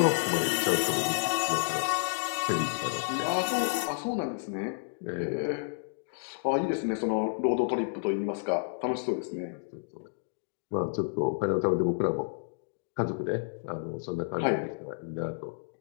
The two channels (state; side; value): silent; right; digital silence